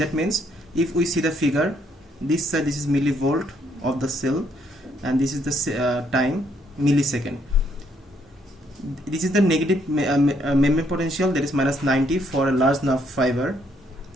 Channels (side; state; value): both; normal; correlation 0.70